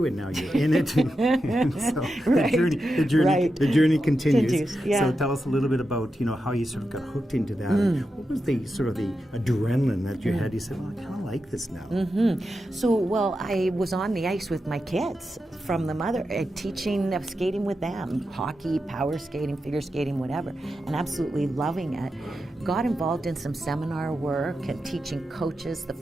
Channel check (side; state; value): both; normal; correlation 0.89